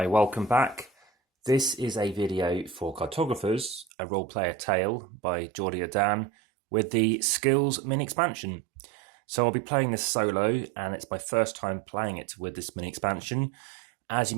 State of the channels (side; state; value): left; drops out; at 3.9 s